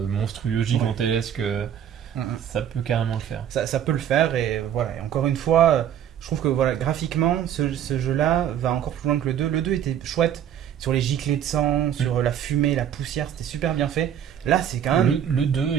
gigantesques, ça peut carrément le faire. Ça peut le faire et voilà. Et encore une fois, je trouve que voilà, graphiquement, ce jeu-là va encore plus loin que le 2. Le 2 était chouette sur les giclées de sang, sur la fumée, la poussière, c'était super bien fait. Là, c'est quand même. Le 2,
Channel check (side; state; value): left; quieter; 9.7 dB